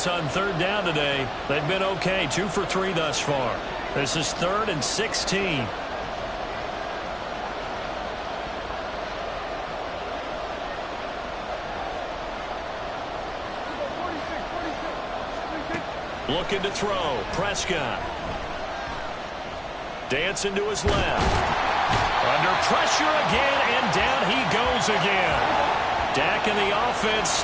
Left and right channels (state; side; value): identical; both; correlation 1.00